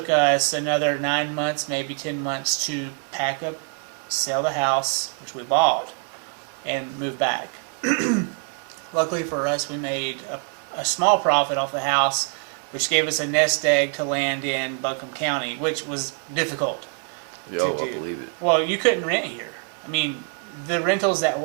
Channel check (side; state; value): left; quieter; 39.6 dB